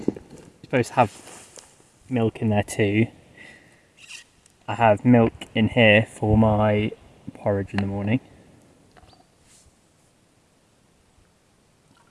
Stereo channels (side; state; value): both; identical; correlation 1.00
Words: You're supposed to have milk in there too. I have milk in here for my porridge in the morning.